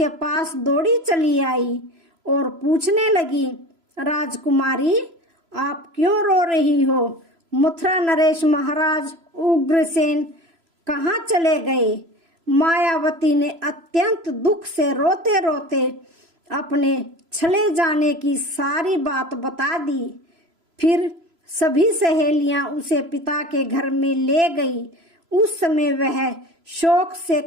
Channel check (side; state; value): left; late; 3.0 ms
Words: पास दौड़ी चली आई और पूछने लगी, राजकुमारी, आप क्यों रो रही हो? मथुरा नरेश महाराज उग्रसेन कहाँ चले गए? मायावती ने अत्यंत दुख से रोते रोते अपने चले जाने की सारी बात बता दी। फिर सभी सहेलियां उसे पिता के घर में ले गई। उस समय वह शोक से